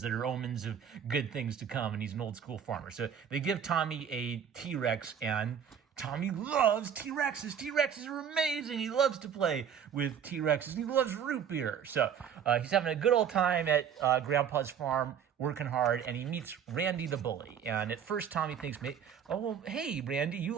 that are omens of good things to come, and he's an old school farmer. So they give Tommy a T-Rex, and Tommy loves T-Rexes. T-Rexes are amazing. He loves to play with T-Rexes. He loves root beer. So he's having a good old time at Grandpa's farm working hard, and he meets Randy the bully. And at first, Tommy thinks, oh, well, hey, Randy, you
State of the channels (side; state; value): left; quieter; 8.1 dB